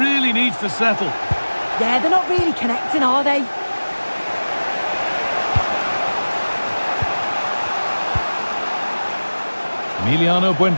needs to settle. Yeah, they're not really connecting, are they? Emiliano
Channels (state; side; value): inverted; both; correlation -1.00